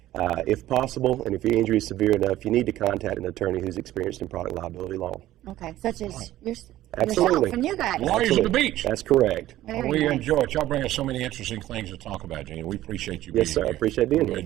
if possible, and if your injury is severe enough, you need to contact an attorney who's experienced in product liability law. Okay, such as Absolutely. yourself and you guys. Lawyers at the beach. That's correct. Very We nice. enjoy it. Y'all bring us so many interesting things to talk about, Gene. We appreciate you being Yes, sir. here. I appreciate being We here.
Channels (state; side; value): quieter; left; 14.5 dB